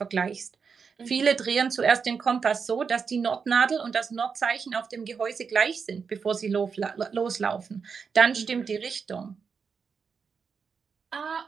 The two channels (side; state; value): left; quieter; 5.8 dB